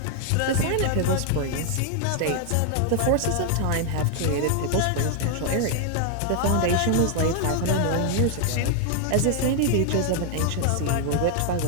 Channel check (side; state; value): both; different; correlation 0.00